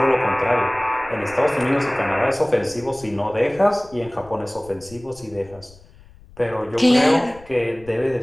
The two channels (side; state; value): left; noise; rumble, 23 dB below the sound